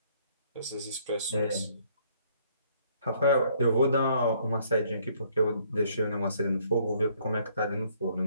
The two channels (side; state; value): both; inverted; correlation -0.64